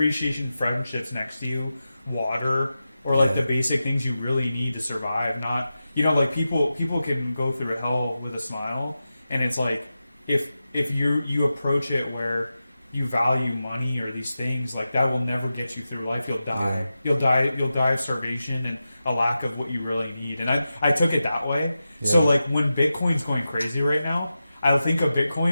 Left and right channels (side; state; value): both; inverted; correlation -0.92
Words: friendships next to you, water, or like the basic things you really need to survive. Not like people can go through hell with a smile, and it's like if you approach it where you value money or these things, like that will never get you through life. You'll die. You'll die of starvation and a lack of what you really need. And I took it that way. So like when Bitcoin's going crazy right now, I'll think of